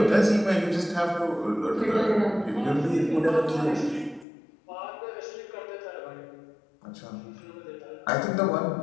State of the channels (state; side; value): drops out; right; at 4.2 s